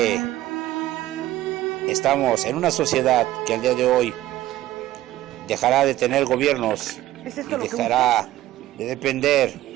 estamos en una sociedad que al día de hoy dejará de tener gobiernos y dejará de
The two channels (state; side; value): quieter; left; 14.9 dB